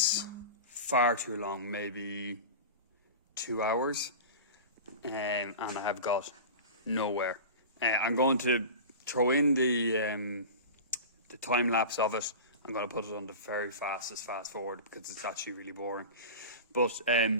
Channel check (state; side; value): inverted; both; correlation -0.31